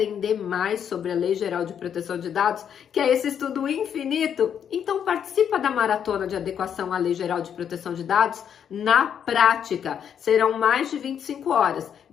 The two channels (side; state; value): right; quieter; 8.4 dB